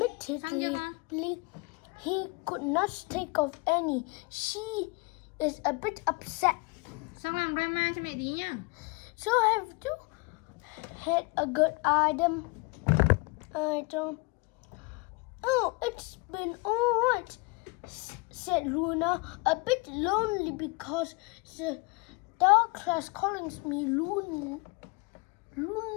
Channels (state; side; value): quieter; right; 27.7 dB